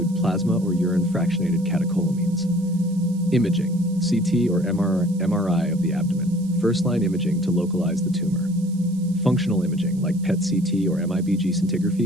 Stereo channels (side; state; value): right; noise; hiss, 24 dB below the sound